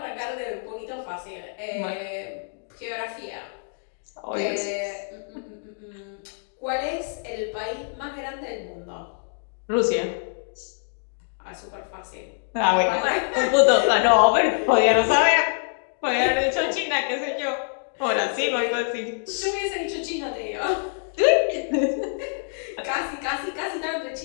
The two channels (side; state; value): right; silent; digital silence